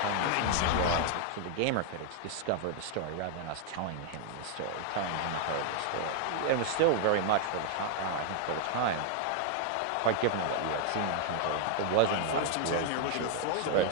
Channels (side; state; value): both; different; correlation 0.00